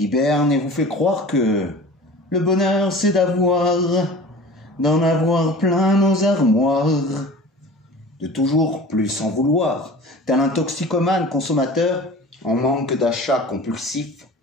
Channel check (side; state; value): both; normal; correlation 0.40